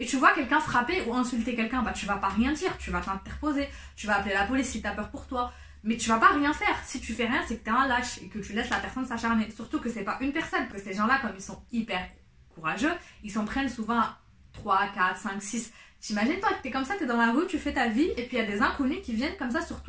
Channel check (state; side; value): identical; both; correlation 1.00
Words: tu vois quelqu'un frapper ou insulter quelqu'un. Bah tu vas pas rien dire, tu vas t'interposer, tu vas appeler la police si t'as peur pour toi. Mais tu vas pas rien faire. Si tu fais rien, c'est que t'es un lâche et que tu laisses la personne s'acharner. Surtout que c'est pas une personne, que ces gens-là, comme ils sont hyper courageux, ils s'en prennent souvent 3, 4, 5, 6. T'imagines toi que t'es comme ça, t'es dans la rue, tu fais ta vie, et puis il y a des inconnus qui viennent comme ça sur